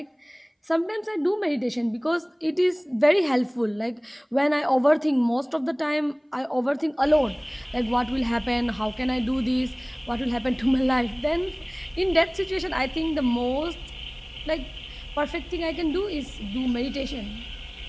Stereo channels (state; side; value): identical; both; correlation 1.00